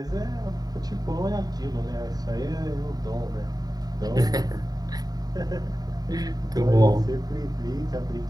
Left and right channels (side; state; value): left; late; 0.18 ms